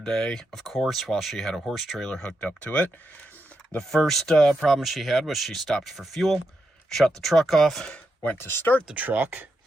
day, of course, while she had a horse trailer hooked up to it. The first problem she had was she stopped for fuel, shut the truck off, went to start the truck,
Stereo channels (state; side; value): normal; both; correlation 0.84